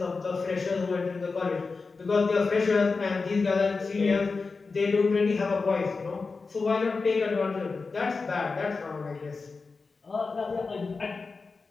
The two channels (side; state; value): right; quieter; 4.3 dB